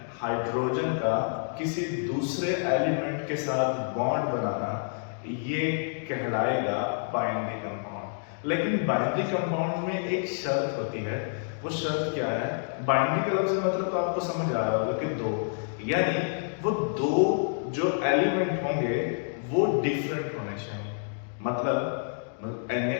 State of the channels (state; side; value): silent; right; digital silence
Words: हाइड्रोजन का किसी दूसरे एलिमेंट के साथ बॉन्ड बनाना, ये कहलाएगा बाइंडिंग कंपाउंड। लेकिन बाइंडिंग कंपाउंड में एक शर्त होती है। वो शर्त क्या है? बाइंडिंग का लफ्ज़ मतलब तो आपको समझ आ रहा होगा कि दो, यानी वो दो जो एलिमेंट होंगे वो डिफरेंट होने चाहिए। मतलब